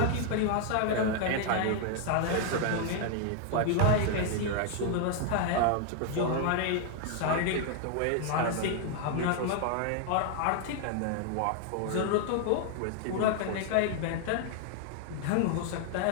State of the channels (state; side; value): different; both; correlation 0.00